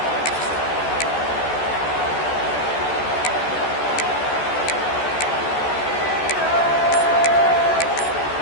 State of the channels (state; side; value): late; right; 14 ms